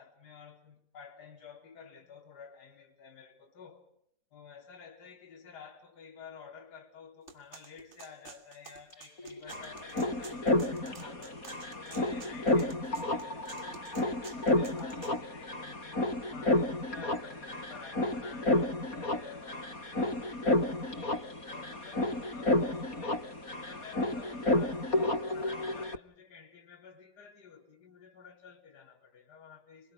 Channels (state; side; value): late; right; 3.3 ms